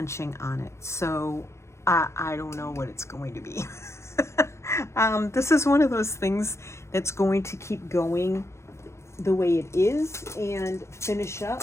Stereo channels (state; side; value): late; right; 0.13 ms